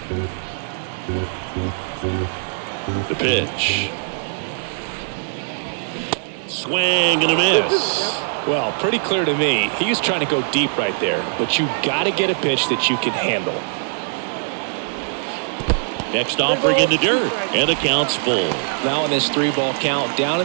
The pitch. Swing and a miss. Well, pretty clear to me. He was trying to go deep right there, but you got to get a pitch that you can handle. Next offering in the dirt, and the count's full. Now in this 3-ball count, down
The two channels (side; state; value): left; silent; digital silence